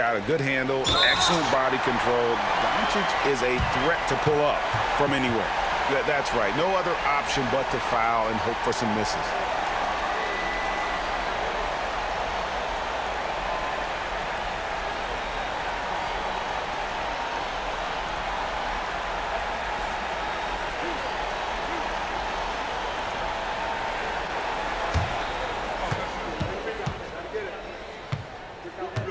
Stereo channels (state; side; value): identical; both; correlation 1.00